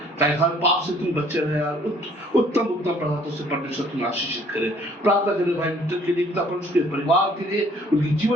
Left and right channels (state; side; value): normal; both; correlation 0.59